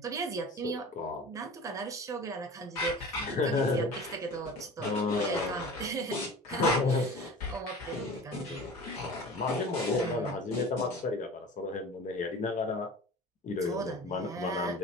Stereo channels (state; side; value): normal; both; correlation 0.38